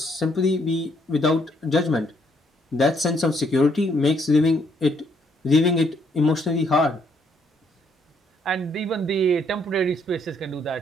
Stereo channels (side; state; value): both; normal; correlation 0.70